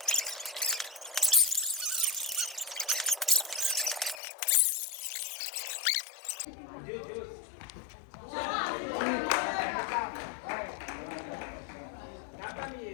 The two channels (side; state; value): right; drops out; at 4.2 s